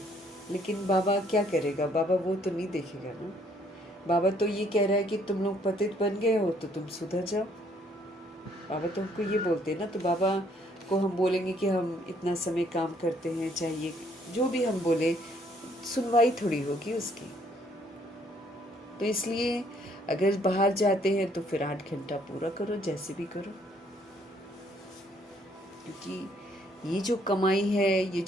लेकिन बाबा क्या करेगा, बाबा वो तो नहीं देखेगा ना। बाबा तो ये कह रहा है कि तुम लोग पतित बन गए हो तो तुम सुधर जाओ। बाबा तो हमको ये बोलते हैं ना, तो बाबा को हम बोलेंगे कि हम इतना समय काम करते हैं, चाहिए जो भी हम बोले, सुनवाई थोड़ी होगी उसकी। तो इसलिए अगर बाहर जाते हैं तो फिर 8 घंटा पूरा करो, जैसे भी करो, क्योंकि ये जो कमाई है, ये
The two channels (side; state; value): both; normal; correlation 0.66